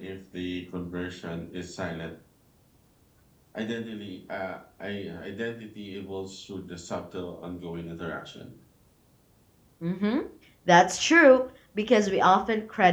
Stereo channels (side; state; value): both; identical; correlation 1.00